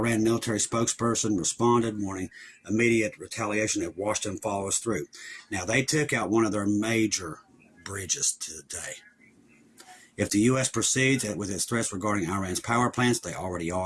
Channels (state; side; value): identical; both; correlation 1.00